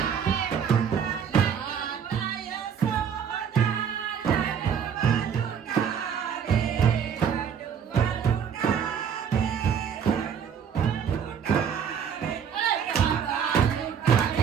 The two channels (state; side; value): quieter; left; 7.6 dB